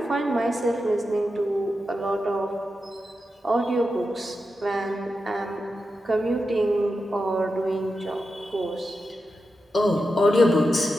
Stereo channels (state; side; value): normal; both; correlation 0.89